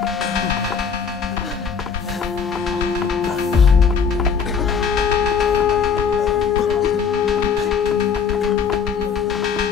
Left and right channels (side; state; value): right; quieter; 6.3 dB